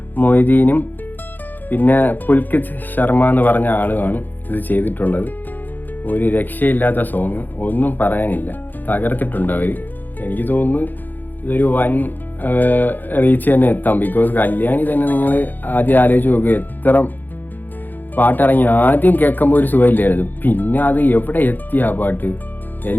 മൊയ്തീനും പിന്നെ പുൽകിത് ശർമ്മ എന്ന് പറഞ്ഞ ആളുമാണ് ഇത് ചെയ്തിട്ടുള്ളത്. ഒരു രക്ഷയില്ലാത്ത സോങ്, ഒന്നും പറയാനില്ല, തകർത്തിട്ടുണ്ട് അവർ. എനിക്ക് തോന്നുന്നു ഇതൊരു വൻ റീച്ച് തന്നെ എത്താം. ബിക്കോസ് കല്യാണി തന്നെ നിങ്ങൾ ആദ്യം ആലോചിച്ച് നോക്കുക, എത്ര പാട്ടിറങ്ങി. ആദ്യം കേൾക്കുമ്പോൾ ഒരു സുഖമില്ലായിരുന്നു, പിന്നെ അത് എവിടെ എത്തി ആ പാട്ട്,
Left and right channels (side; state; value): right; late; 0.087 ms